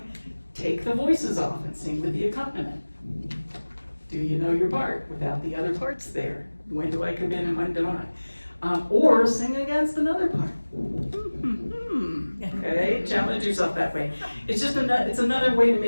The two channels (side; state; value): both; inverted; correlation -1.00